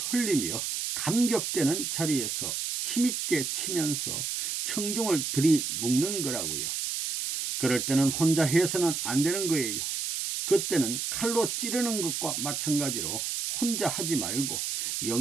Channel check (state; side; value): noise; right; hiss, 2 dB below the sound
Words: 감격되는 자리에서 힘있게 치면서 청중을 들이묶는 거라고요. 그럴 때는 혼자 해서는 안 되는 거예요. 그때는 칼로 찌르는 것과 마찬가지로 혼자 하지 말고